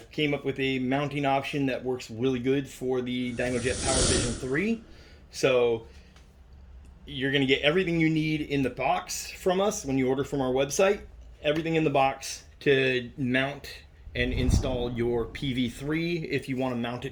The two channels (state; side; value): identical; both; correlation 1.00